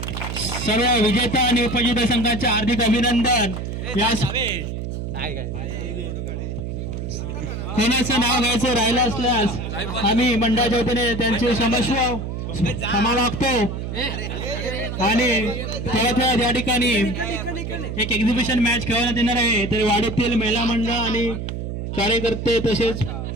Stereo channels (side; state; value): right; noise; hum, 5 dB below the sound